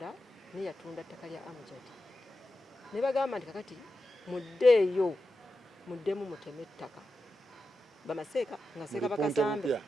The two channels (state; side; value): normal; both; correlation 0.90